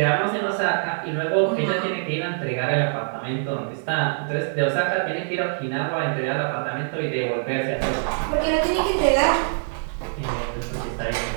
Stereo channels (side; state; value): left; silent; 63 dB below the other